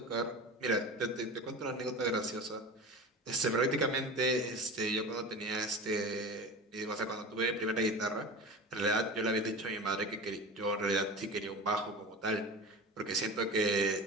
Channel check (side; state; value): both; normal; correlation 0.31